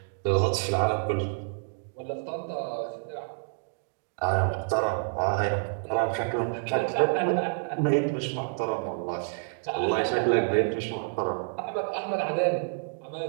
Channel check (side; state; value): left; silent; digital silence